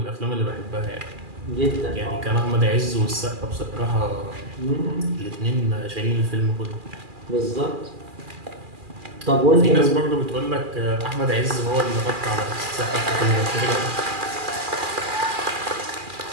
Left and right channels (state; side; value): late; left; 2.4 ms